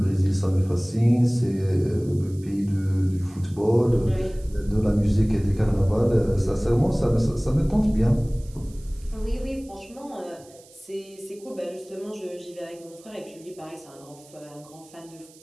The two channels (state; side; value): noise; right; hiss, 25 dB below the sound